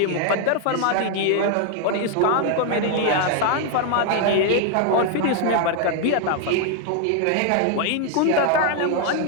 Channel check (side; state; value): both; different; correlation 0.00